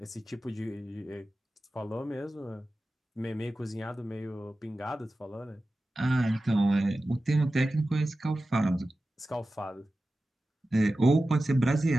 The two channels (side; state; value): both; normal; correlation 0.94